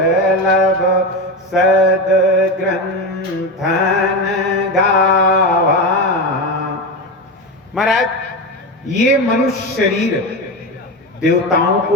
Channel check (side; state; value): both; normal; correlation 0.19